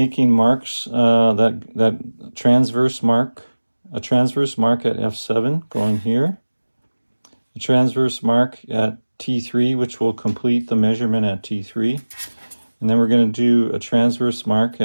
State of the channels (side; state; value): both; inverted; correlation -1.00